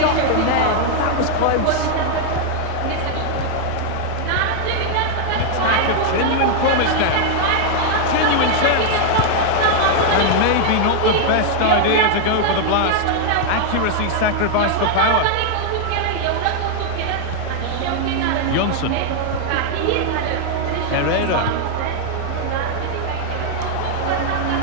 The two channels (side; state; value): both; different; correlation 0.00